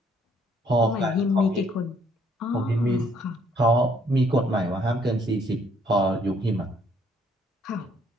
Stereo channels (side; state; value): both; normal; correlation 0.65